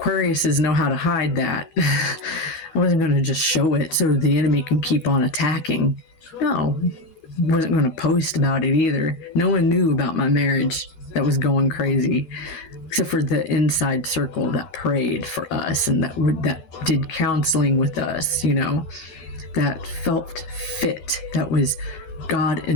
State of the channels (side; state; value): right; late; 13 ms